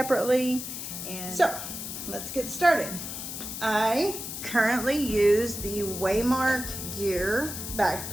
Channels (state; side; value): noise; left; hiss, 7 dB below the sound